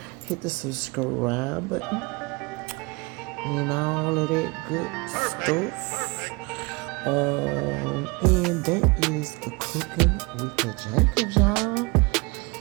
Hit the subscribe button and all of that good stuff. And that is the cooking with the Jacobs, y'all.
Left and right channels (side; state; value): left; quieter; 27.1 dB